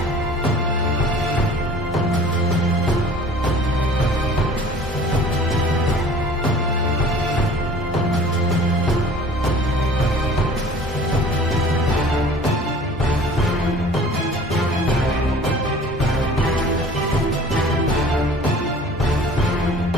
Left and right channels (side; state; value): right; noise; hum, 20 dB below the sound